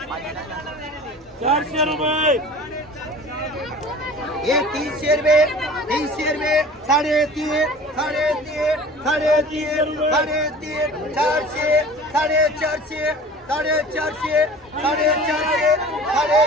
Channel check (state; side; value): normal; both; correlation 0.42